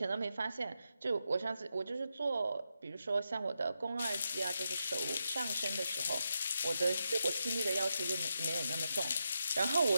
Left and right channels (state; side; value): inverted; both; correlation -0.85